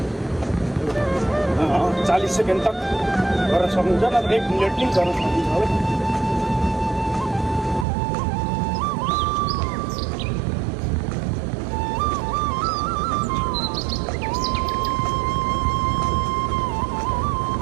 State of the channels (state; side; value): drops out; left; at 7.9 s